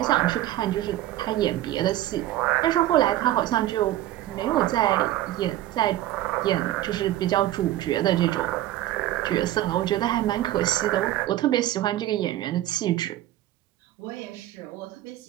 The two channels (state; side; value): quieter; left; 14.1 dB